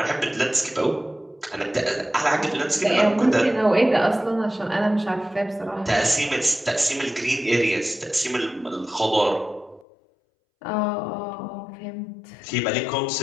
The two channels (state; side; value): drops out; right; at 9.9 s